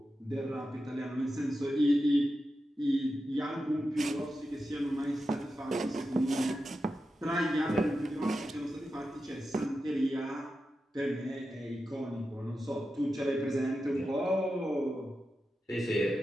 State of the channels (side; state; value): both; normal; correlation 0.90